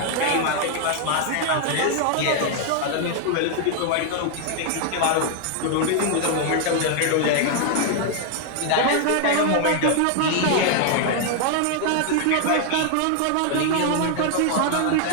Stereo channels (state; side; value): different; both; correlation 0.00